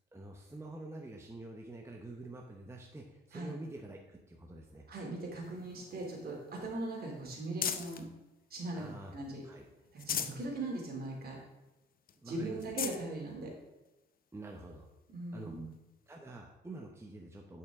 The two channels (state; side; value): normal; both; correlation 0.43